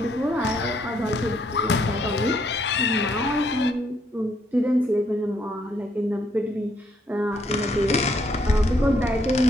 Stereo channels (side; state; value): both; normal; correlation 0.72